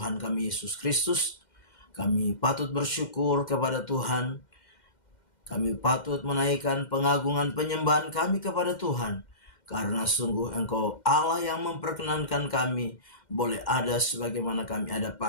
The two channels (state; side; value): late; right; 2.1 ms